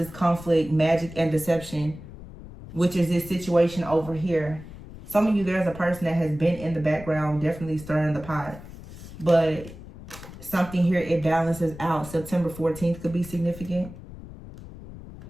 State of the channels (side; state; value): left; noise; rumble, 15 dB below the sound